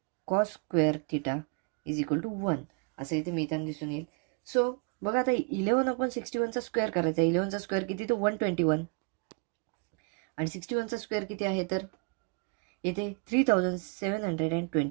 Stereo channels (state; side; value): quieter; left; 35.1 dB